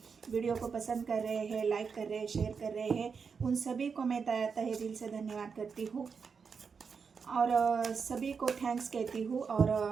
वीडियो को पसंद कर रहे हैं, लाइक कर रहे हैं, शेयर कर रहे हैं, उन सभी को मैं तहे दिल से धन्यवाद करती हूँ और सभी को थैंक्स कहती हूँ।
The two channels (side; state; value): left; quieter; 5.8 dB